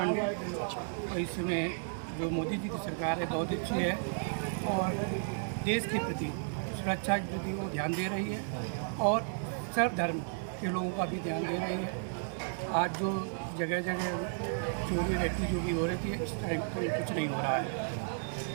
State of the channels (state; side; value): silent; left; digital silence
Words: और इस समय जो मोदी जी की सरकार है बहुत अच्छी है और देश के प्रति, सुरक्षा के प्रति वो ध्यान दे रही है और सर्व धर्म के लोगों का भी ध्यान दे रही है। आज जो जगह जगह चोरी रहती जो भी हो रही थी, इस टाइम पर कुछ नहीं हो रहा है